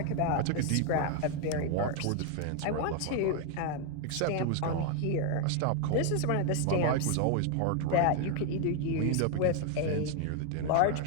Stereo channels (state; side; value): different; both; correlation 0.01